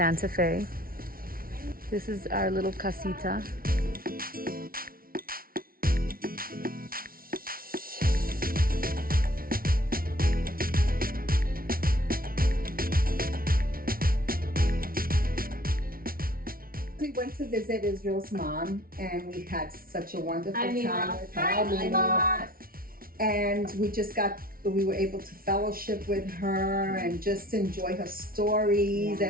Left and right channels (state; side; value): late; left; 0.43 ms